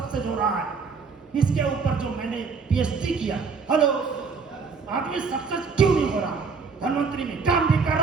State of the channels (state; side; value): quieter; left; 5.1 dB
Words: हो रहा है? इसके ऊपर जो मैंने पीएचडी किया, हेलो, आदमी सक्सेस क्यों नहीं हो रहा? धनवंतरी में काम भी कर